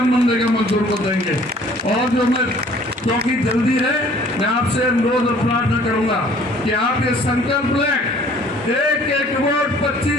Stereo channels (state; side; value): normal; both; correlation 0.54